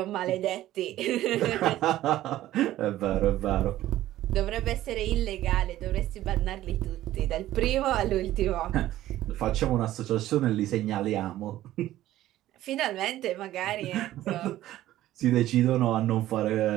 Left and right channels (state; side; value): quieter; left; 14.3 dB